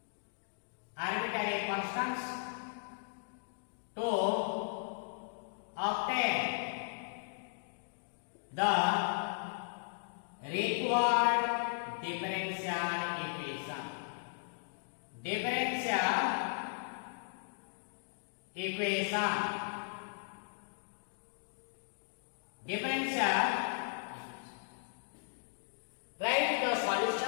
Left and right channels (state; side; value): silent; right; digital silence